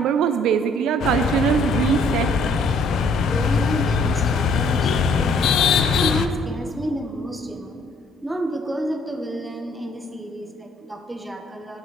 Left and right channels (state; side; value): normal; both; correlation 0.62